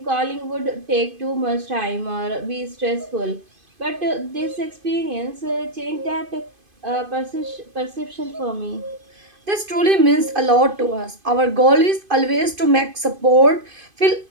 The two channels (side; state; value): left; late; 2.5 ms